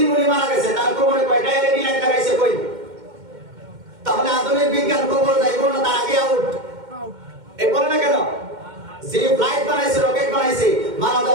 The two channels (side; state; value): left; late; 2.1 ms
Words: উনি মারা গেছে তার কবরে কয়টা এলইডি লাইট লাগাইছে? কই? তাহলে আধুনিক বিজ্ঞান কবর যাইব না, তার আগে আউট। এই বলে না কেন? যে ফ্লাইট বানাইছে, রকেট বানাইছে, মারা